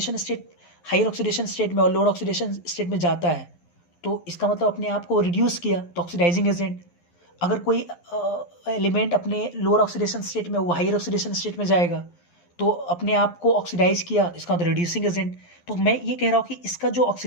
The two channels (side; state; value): right; late; 11 ms